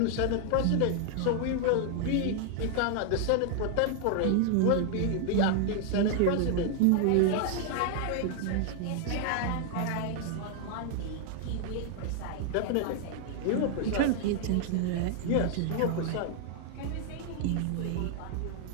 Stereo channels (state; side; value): different; both; correlation 0.00